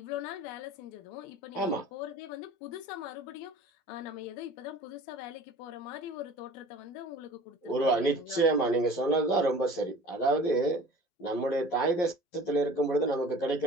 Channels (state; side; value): late; right; 11 ms